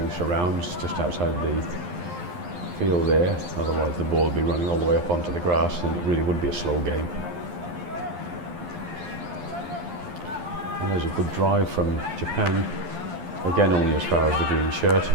surrounds just outside the field there, otherwise the ball would be running all the way up onto the grass and it really would be a slow game. And there's a good drive from Japan, again only as far as the green shirt,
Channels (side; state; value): left; late; 11 ms